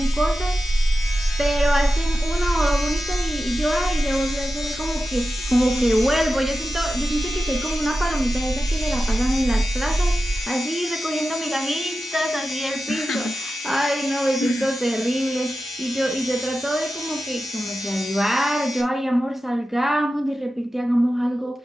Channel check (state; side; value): normal; both; correlation 0.92